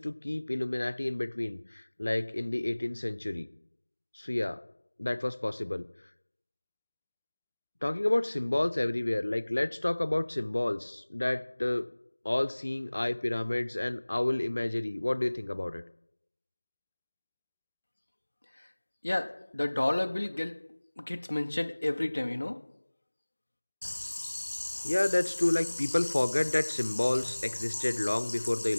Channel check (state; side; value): inverted; both; correlation -1.00